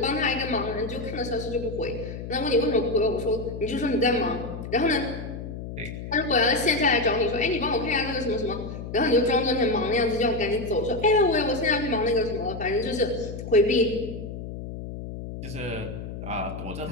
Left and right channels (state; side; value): noise; left; hum, 9 dB below the sound